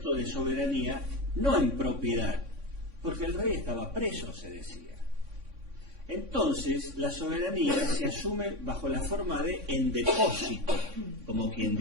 de soberanía no en propiedad, porque el rey estaba preso, se decía. Entonces, la soberanía se asume bajo la forma de en depósito, como quien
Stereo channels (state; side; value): late; left; 3.6 ms